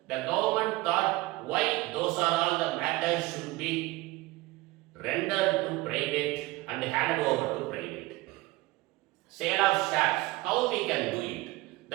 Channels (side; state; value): left; quieter; 20.0 dB